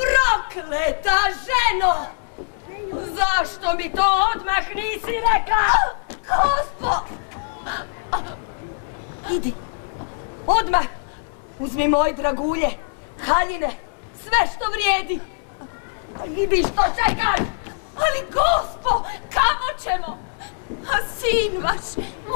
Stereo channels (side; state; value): right; silent; 60 dB below the other